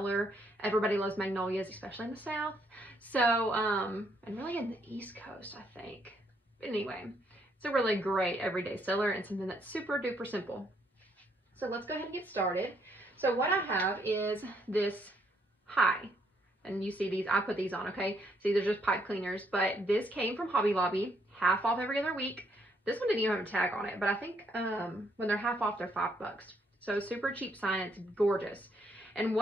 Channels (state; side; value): normal; both; correlation 0.72